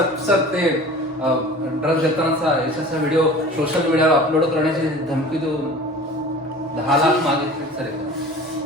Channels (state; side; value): normal; both; correlation 0.41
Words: सर ते ड्रग्ज देतानाचा यशाचा व्हिडिओ सोशल मीडियावर अपलोड करण्याची धमकी देऊन 10 लाख मागितले सर.